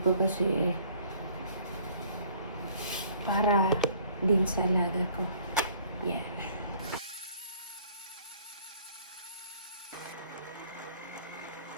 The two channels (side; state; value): both; inverted; correlation -0.56